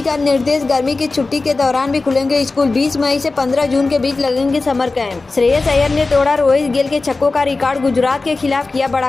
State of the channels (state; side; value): quieter; right; 3.6 dB